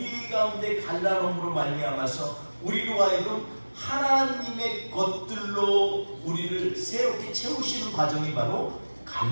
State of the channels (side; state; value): both; inverted; correlation -1.00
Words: 가운데 갈라놓음으로 말미암아서 우리로 하여금 하나님의 것들로 우리를 새롭게 채우시는 과정이 바로